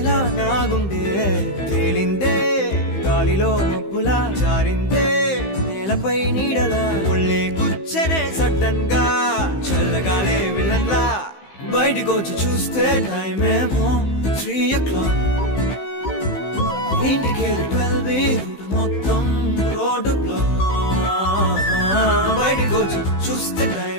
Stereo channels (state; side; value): late; right; 15 ms